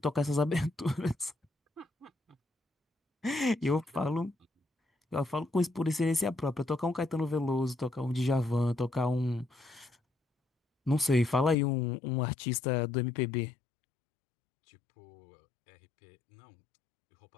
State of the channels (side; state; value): right; drops out; at 11.6 s